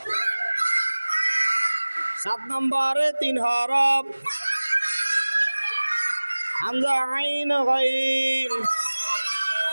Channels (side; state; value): both; inverted; correlation -1.00